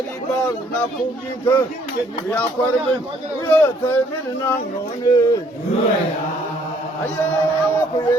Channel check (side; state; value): both; normal; correlation 0.64